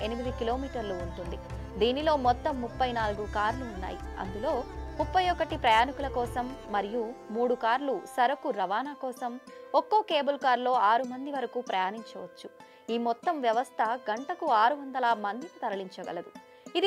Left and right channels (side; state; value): both; identical; correlation 1.00